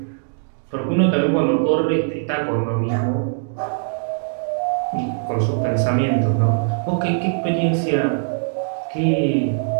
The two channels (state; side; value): silent; left; digital silence